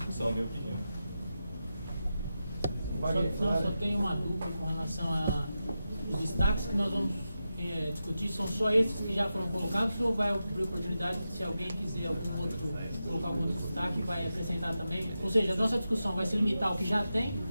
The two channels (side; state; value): both; inverted; correlation -0.90